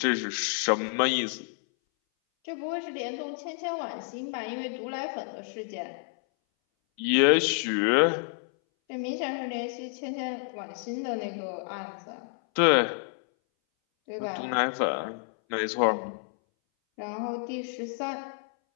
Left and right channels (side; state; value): right; silent; 58 dB below the other